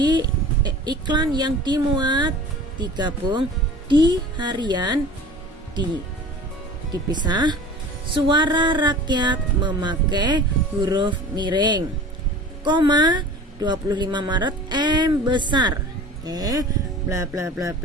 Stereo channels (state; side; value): normal; both; correlation 0.41